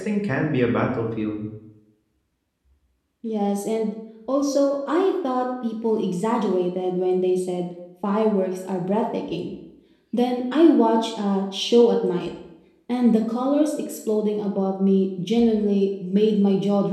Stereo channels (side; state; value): both; identical; correlation 1.00